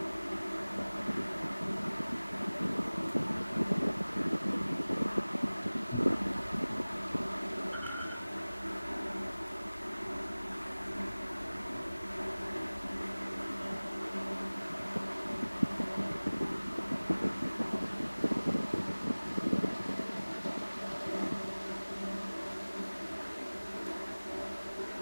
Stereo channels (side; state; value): both; inverted; correlation -0.99